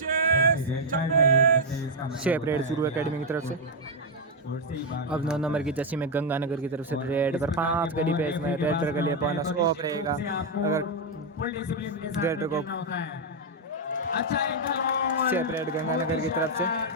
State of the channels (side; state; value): both; normal; correlation 0.01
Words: शेप रेड चूरू एकेडमी की तरफ से। अब 9 नंबर की जर्सी में गंगानगर की तरफ से रेड पर 5 के डिफेंस में रेडर के लिए बोनस ऑफ रहेगा। अगर रेडर को शेप रेड गंगानगर की तरफ से